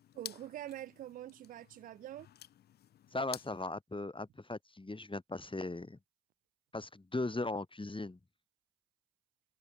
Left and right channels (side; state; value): both; normal; correlation 0.54